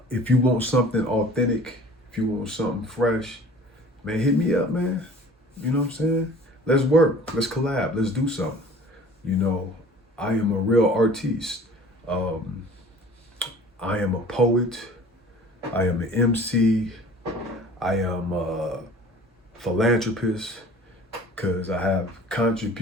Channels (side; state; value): both; normal; correlation 0.47